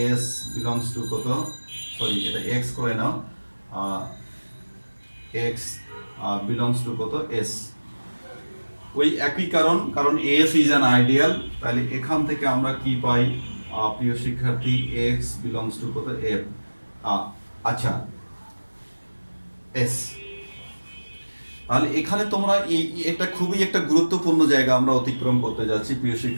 S belongs to কত, সরি এটা এক্স করে নাও, এক্স বিলংস টু কত এস, ওই একই কারণ, কারণ এস ইজ অ্যান আইডিয়াল, তাহলে এখান থেকে আমরা কি পাই প্রিয় শিক্ষার্থী, এক্স বিলংস টু কত এফ। আচ্ছা, এস, তাহলে এখানে তোমরা এটা খুবই একটা গুরুত্বপূর্ণ জায়গা আমরা অতিক্রম করতে যাচ্ছি প্রিয়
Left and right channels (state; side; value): inverted; both; correlation -1.00